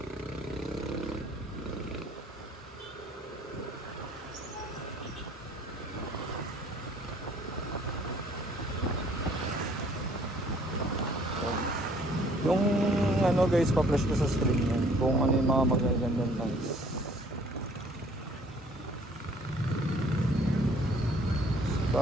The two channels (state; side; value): normal; both; correlation 0.58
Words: Yung ano guys, pa-flash ko sa screen yan kung ano yung mga magagandang lines.